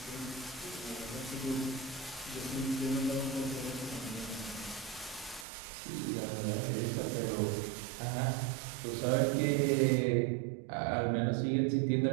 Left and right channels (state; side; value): drops out; left; at 5.5 s